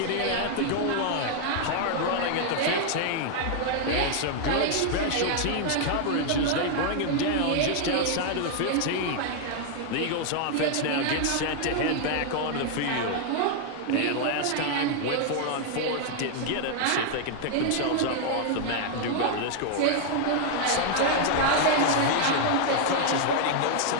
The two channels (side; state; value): both; different; correlation 0.00